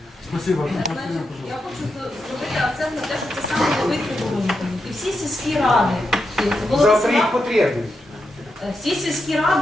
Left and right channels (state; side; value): normal; both; correlation 0.86